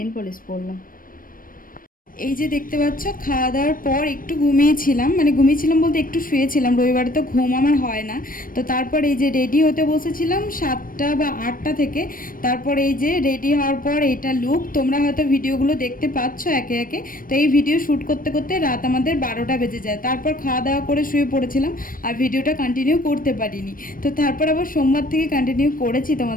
পলিশ পরলাম। এই যে দেখতে পাচ্ছ, খাওয়া দাওয়ার পর একটু ঘুমিয়েছিলাম, মানে ঘুমিয়েছিলাম বলতে একটু শুয়েছিলাম, রবিবারে তো ঘুম আমার হয় না। তো তারপর এই যে রেডি হতে বসেছিলাম 7টা বা 8টা থেকে। তারপর এই যে রেডি হওয়ার পর এইটা লুক, তোমরা হয়তো ভিডিওগুলো দেখতে পাচ্ছ একে একে। তো এই ভিডিও শ্যুট করতে করতে রাত আমাদের 12টা বেজে যায়। তারপর খাওয়া দাওয়া করে শুয়ে পড়েছিলাম, আর ভিডিওটা কন্টিনিউ করতে পারিনি। তো তারপর আবার সোমবার থেকে কন্টিনিউ করেছি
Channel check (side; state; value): right; late; 0.41 ms